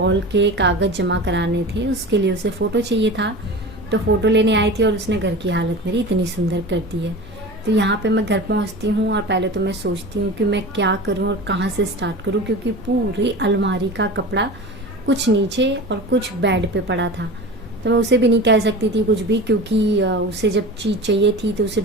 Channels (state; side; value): normal; both; correlation 0.33